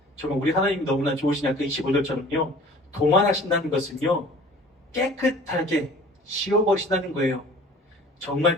정말 우리 하나님이 너무나 좋으시냐 그 25절처럼요 도만하신다는 것은요 깨끗하게 지워버리신다는 거예요. 정말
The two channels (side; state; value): both; normal; correlation 0.47